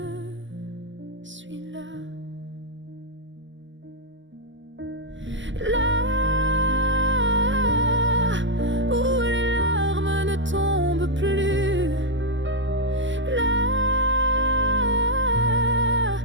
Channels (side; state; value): left; late; 0.54 ms